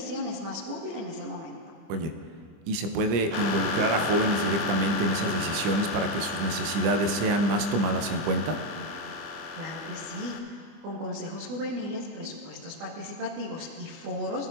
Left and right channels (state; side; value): late; left; 25 ms